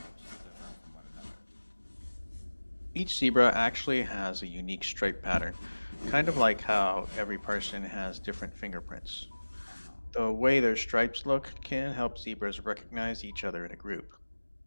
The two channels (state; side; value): inverted; both; correlation -1.00